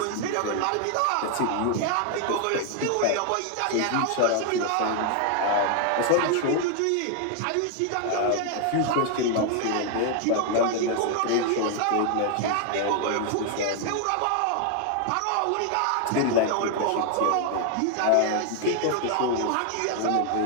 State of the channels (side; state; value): both; different; correlation 0.00